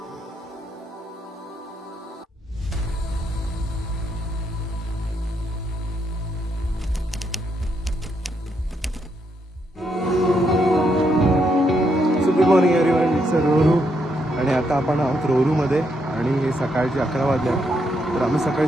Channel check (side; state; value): both; normal; correlation 0.77